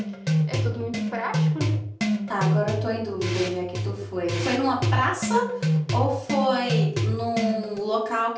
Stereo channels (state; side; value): identical; both; correlation 1.00